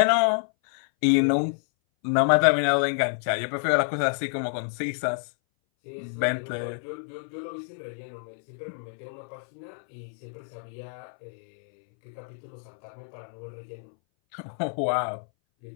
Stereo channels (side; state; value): right; silent; 59 dB below the other